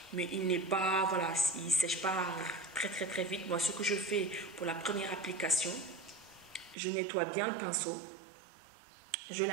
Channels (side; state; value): left; drops out; at 6.8 s